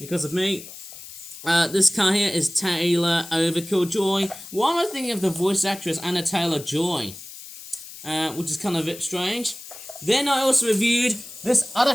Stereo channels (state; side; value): noise; left; hiss, 14 dB below the sound